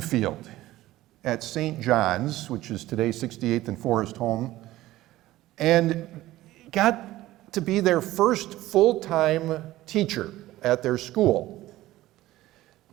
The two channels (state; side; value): quieter; left; 16.1 dB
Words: at St. John's, which is today 68th and Forest Home, and got to be their first full-time teacher at their school.